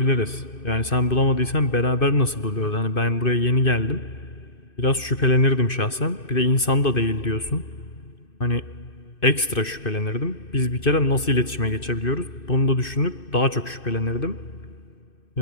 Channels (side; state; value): right; late; 2.6 ms